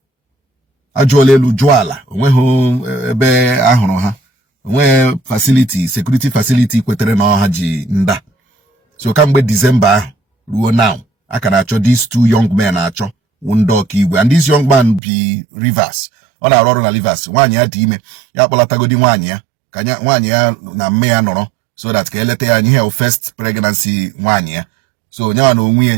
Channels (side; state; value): left; drops out; at 15.0 s